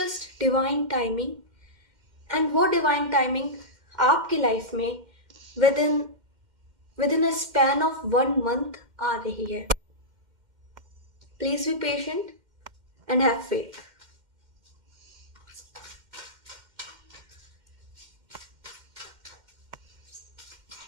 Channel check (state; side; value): late; left; 2.1 ms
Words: divine timing. And वो डिवाइन टाइमिंग आपकी लाइफ में with in a span of 1 month आ रही है. Please be patient and have faith.